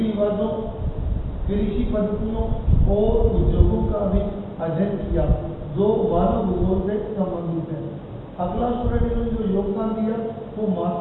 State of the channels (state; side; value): identical; both; correlation 1.00